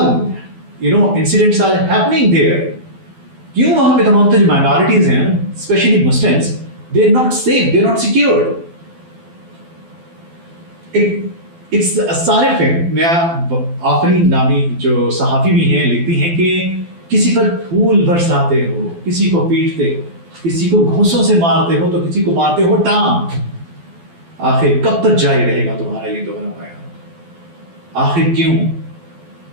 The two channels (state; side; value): late; left; 12 ms